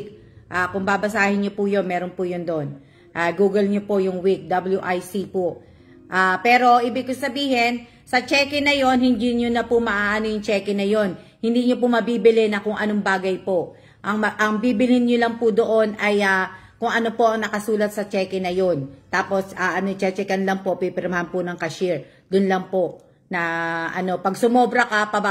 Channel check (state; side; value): identical; both; correlation 1.00